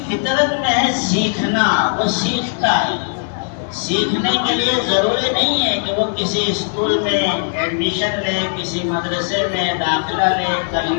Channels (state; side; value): silent; right; digital silence